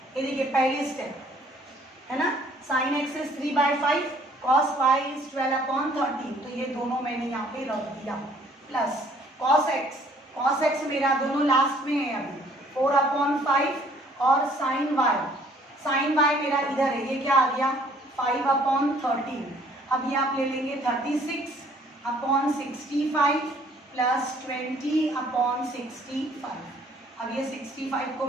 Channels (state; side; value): normal; both; correlation 0.59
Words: ये देखिए पहली स्टेप है ना, sine x is 3/5, cos y is 12 upon 13, तो ये दोनों मैंने यहाँ पे रख दिया। प्लस कॉस एक्स मेरा दोनों लास्ट में है अभी 4 अपॉन 5, और साइन वाई मेरा इधर है, ये क्या आ गया 5 अपॉन 13। अब ये आप ले लेंगे 36 अपॉन 65 प्लस 20 अपॉन 65। अब ये 65 को